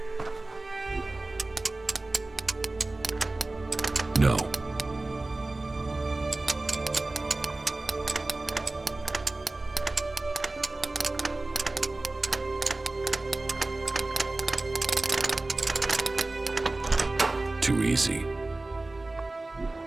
No. Too easy.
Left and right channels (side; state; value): left; quieter; 3.0 dB